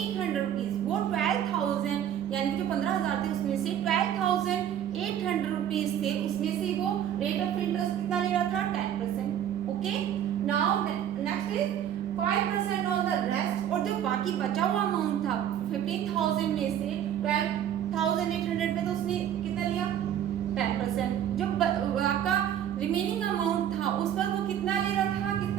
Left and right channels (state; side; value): quieter; left; 10.2 dB